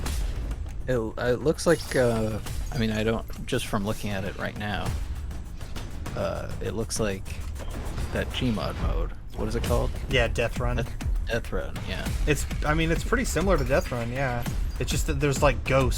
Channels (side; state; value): both; identical; correlation 1.00